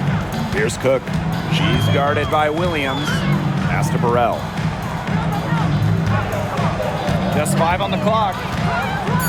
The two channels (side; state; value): both; identical; correlation 1.00